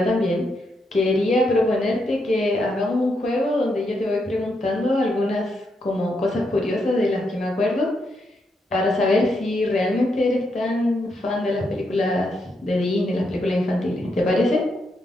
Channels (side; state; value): both; normal; correlation 0.80